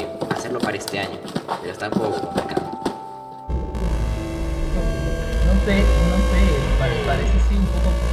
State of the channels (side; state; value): both; identical; correlation 1.00